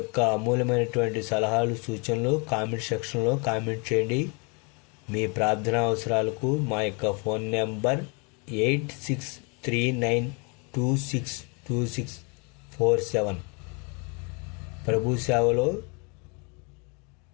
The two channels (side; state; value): right; quieter; 33.1 dB